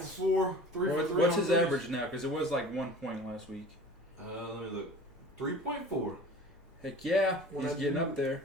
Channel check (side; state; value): both; normal; correlation 0.41